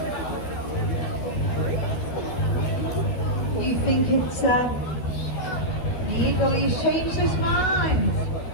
Do you think it's the eagle? He's changed his mind.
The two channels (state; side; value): late; right; 12 ms